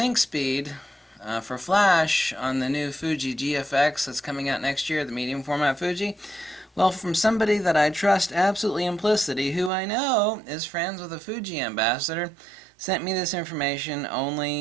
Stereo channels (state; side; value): drops out; left; at 9.7 s